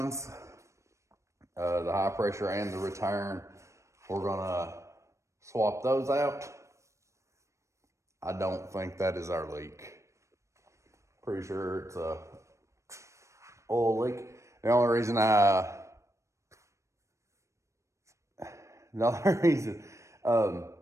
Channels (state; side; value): late; left; 0.15 ms